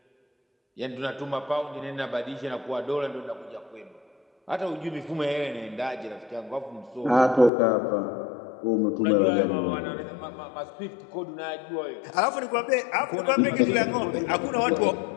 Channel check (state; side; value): drops out; right; at 7.5 s